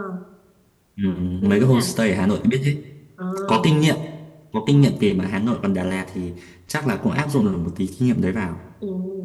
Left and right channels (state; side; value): identical; both; correlation 1.00